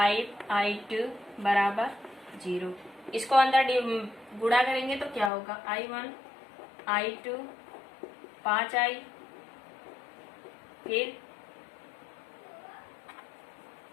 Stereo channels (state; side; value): drops out; right; at 5.3 s